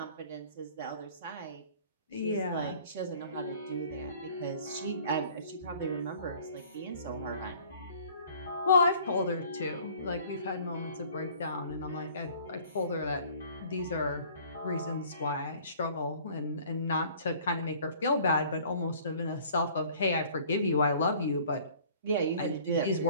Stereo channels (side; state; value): both; inverted; correlation -0.52